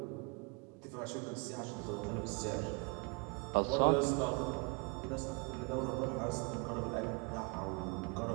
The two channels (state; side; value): quieter; left; 32.5 dB